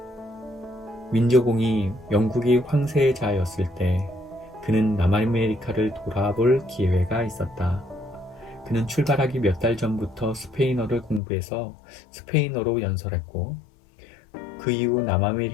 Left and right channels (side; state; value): right; drops out; at 11.2 s